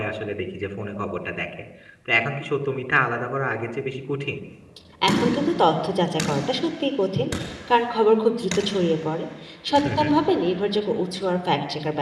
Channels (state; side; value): identical; both; correlation 1.00